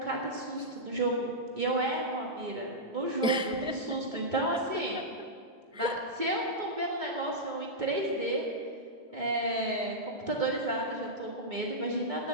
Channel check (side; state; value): both; normal; correlation -0.10